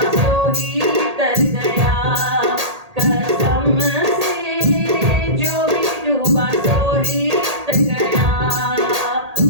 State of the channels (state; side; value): late; left; 1.8 ms